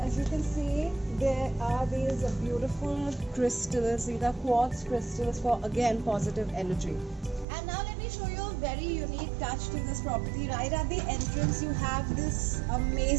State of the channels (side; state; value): left; drops out; at 7.5 s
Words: you can see, there are these beautiful crystals. These are quartz crystals for, again, positive energy. And now let me show you a very unique touch to this property. Right at the entrance, you have this